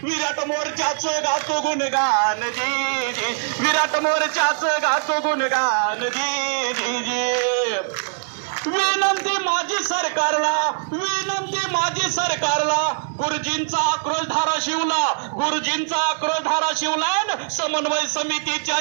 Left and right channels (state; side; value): silent; left; digital silence